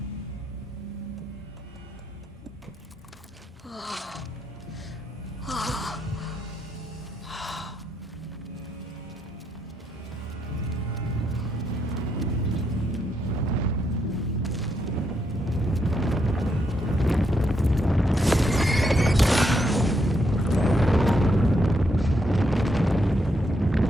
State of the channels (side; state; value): both; normal; correlation 0.78